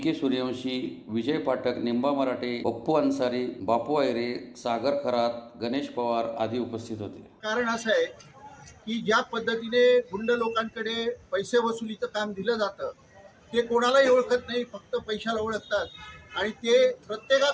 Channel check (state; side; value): identical; both; correlation 1.00